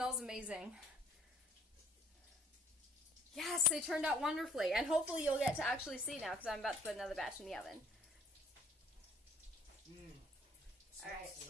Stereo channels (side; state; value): both; normal; correlation 0.59